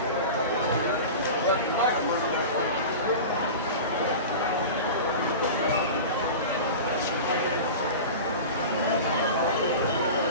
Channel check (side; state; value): both; inverted; correlation -0.31